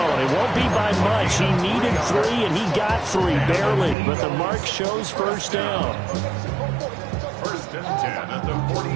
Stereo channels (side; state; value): left; drops out; at 4.0 s